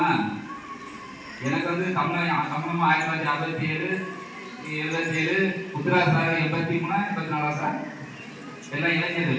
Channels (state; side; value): identical; both; correlation 1.00